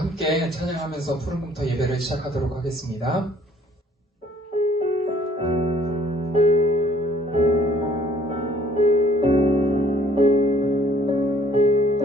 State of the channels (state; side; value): normal; both; correlation 0.59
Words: 찬양하면서 푸른공터 예배를 시작하도록 하겠습니다.